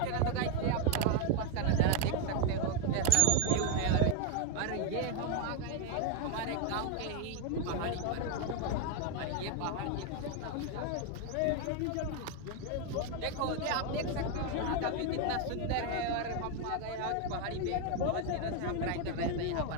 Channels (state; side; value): different; both; correlation 0.01